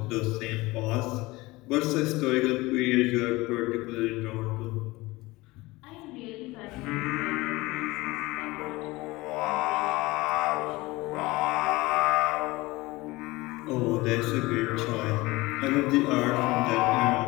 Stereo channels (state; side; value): quieter; right; 21.1 dB